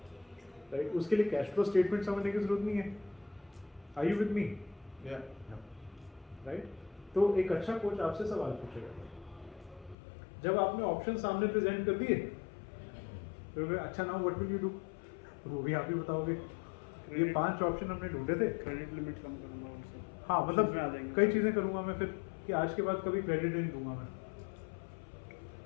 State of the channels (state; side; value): drops out; right; at 10.0 s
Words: right? उसके लिए कैश फ्लो स्टेटमेंट समझने की जरूरत नहीं है। Are you with me? Right? तो एक अच्छा कोच आपसे सवाल पूछेगा, जब आपने ऑप्शन सामने प्रेजेंट कर दिए, फिर अच्छा now what will you do? वो भी आप ही बताओगे, ये 5 ऑप्शन हमने ढूंढे थे। क्रेडिट लिमिट कम करूँगा वो सब। हाँ Options में आ मतलब जाएंगे। कई चीज़ें करूँगा मैं फिर कि आज के बाद कभी क्रेडिट नहीं दूंगा मैं,